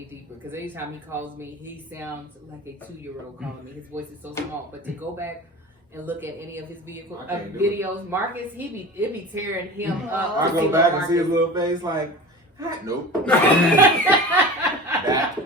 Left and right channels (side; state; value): both; normal; correlation 0.34